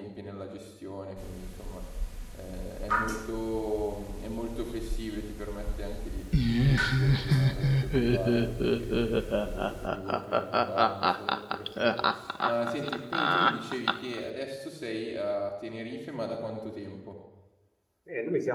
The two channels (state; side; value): identical; both; correlation 1.00